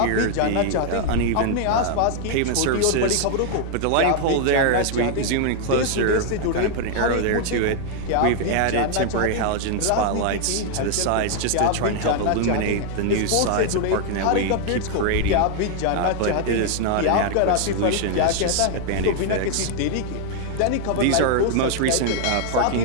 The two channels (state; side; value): different; both; correlation 0.00